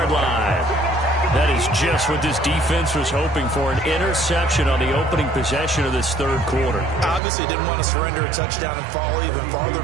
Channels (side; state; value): left; drops out; at 7.2 s